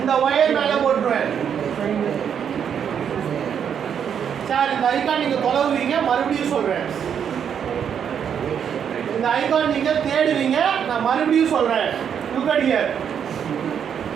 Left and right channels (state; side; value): quieter; left; 8.1 dB